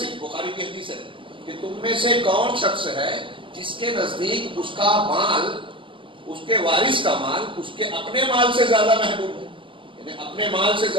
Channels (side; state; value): left; late; 0.25 ms